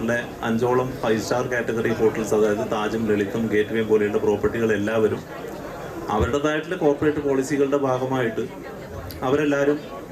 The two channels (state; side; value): identical; both; correlation 1.00